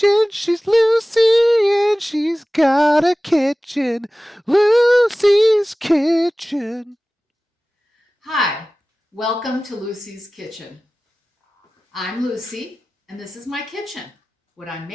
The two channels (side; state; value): both; normal; correlation 0.97